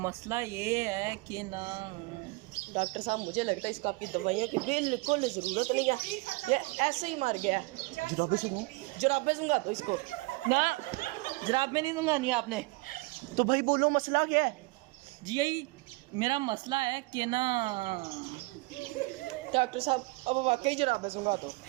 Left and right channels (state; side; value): quieter; left; 24.8 dB